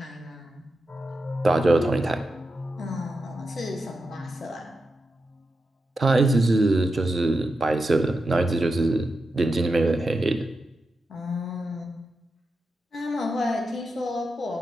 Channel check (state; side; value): normal; both; correlation 0.89